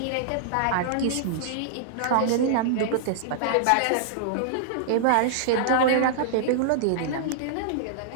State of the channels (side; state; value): both; different; correlation -0.01